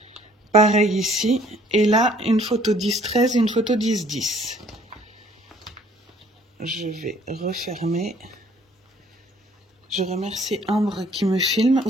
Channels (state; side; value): normal; both; correlation 0.59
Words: Pareil ici. Et là, une photo 10-13 et une photo 10-10. Je vais refermer. Je remercie Ambre qui me filme.